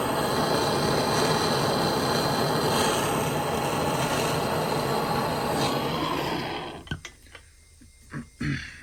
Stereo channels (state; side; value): identical; both; correlation 1.00